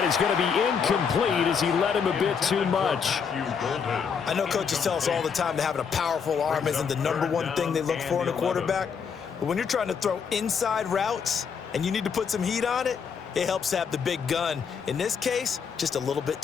is going to be incomplete as he led him a bit too much. I know coaches tell us all the time that having a powerful arm isn't the #1 thing they look for in a quarterback. But when you're trying to throw inside routes and you need to put some heat on it, it helps to have the big gun. In this case, just a little bit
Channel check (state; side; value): quieter; right; 6.4 dB